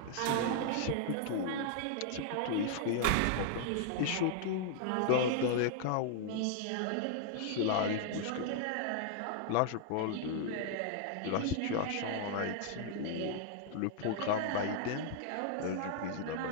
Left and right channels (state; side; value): different; both; correlation -0.01